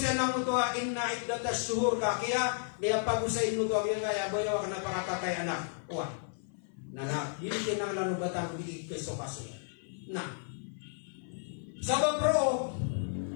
ng ito, inna iddatas suhur ka, kaya niya pag-usay ito, kaya bayaw ka napakatatay anak. Uwa, na hindi kinang lanubatan di keso kaso. Na, sabab pro,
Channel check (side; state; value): right; silent; 56 dB below the other